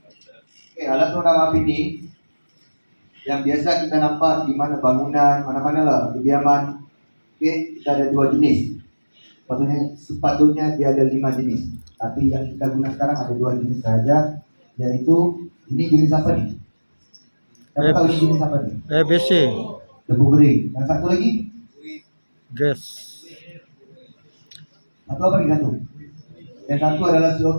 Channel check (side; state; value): both; inverted; correlation -1.00